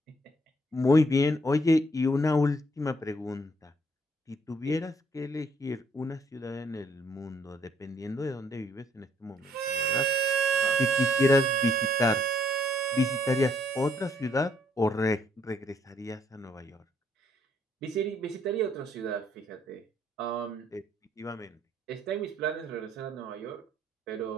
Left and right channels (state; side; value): normal; both; correlation 0.69